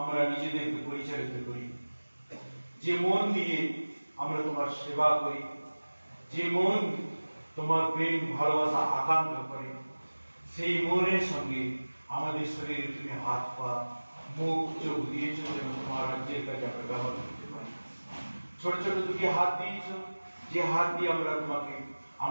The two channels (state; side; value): inverted; both; correlation -1.00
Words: নিজেদেরকে পরিচালিত করি, যে মন দিয়ে আমরা তোমার সেবা করি, যে মন তোমার প্রেম ভালোবাসা আকাঙ্ক্ষা করে, সেই মনের সঙ্গে আমাদের শরীরে তুমি হাত পা মুখ চোখ দিয়েছো যেন তোমার রাজ্যের কাজে আমরা ব্যবহার করতে পারি। ছোট ছোট দুটি হাত দিয়েছো, যে হাত দিয়ে আমরা তোমাকে